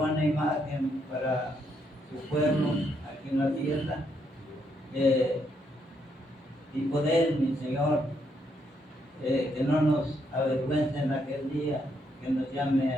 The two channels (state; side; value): normal; both; correlation 0.76